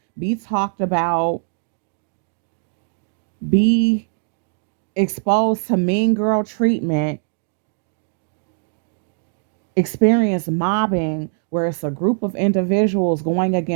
be talked about, be exposed to mean girl treatment, experience mobbing where it's a group of individuals going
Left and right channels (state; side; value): silent; left; digital silence